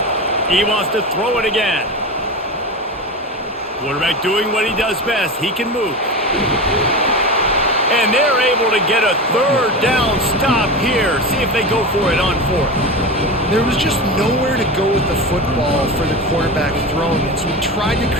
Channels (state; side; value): normal; both; correlation 0.25